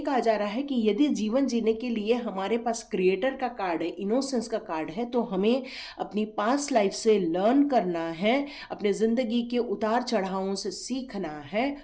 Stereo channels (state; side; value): identical; both; correlation 1.00